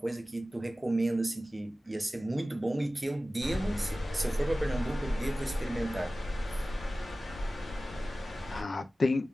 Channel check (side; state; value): both; normal; correlation 0.96